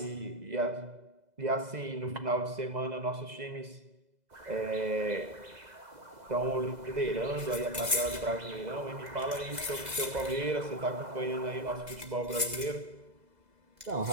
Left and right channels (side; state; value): left; late; 2.0 ms